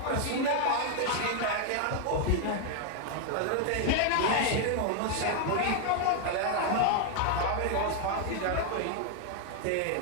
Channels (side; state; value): both; different; correlation 0.01